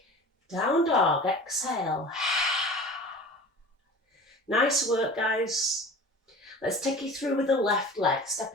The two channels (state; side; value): normal; both; correlation 0.39